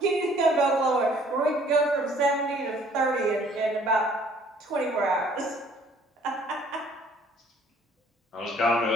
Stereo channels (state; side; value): normal; both; correlation 0.58